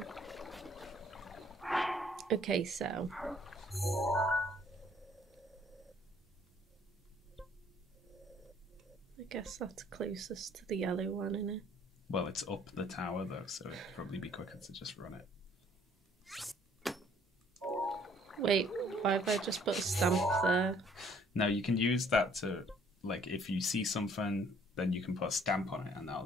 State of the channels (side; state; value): both; normal; correlation 0.60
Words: Okay, so. I guess that's closest to the yellow one, isn't it? Well, it's up the tower though, so it'd probably be quicker to just run it. Wait, why have I just put a stamp there? No, you can use that to, like, if you see something, then you can put a stamp on it, and